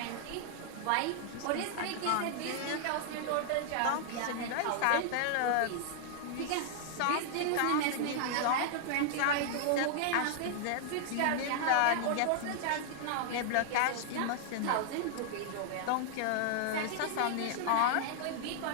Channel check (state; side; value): different; both; correlation -0.01